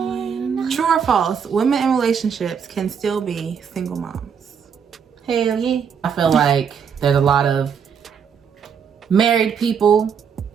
true or false, women in relationships can still be single moms. Hell yeah. I feel like there's a lot of married people,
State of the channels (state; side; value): quieter; left; 7.0 dB